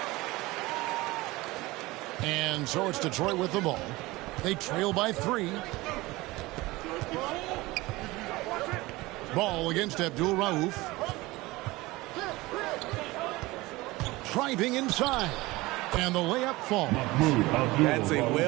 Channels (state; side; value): quieter; left; 20.6 dB